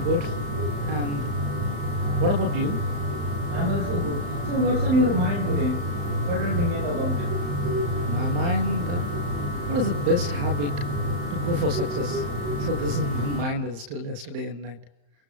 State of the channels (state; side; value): late; left; 35 ms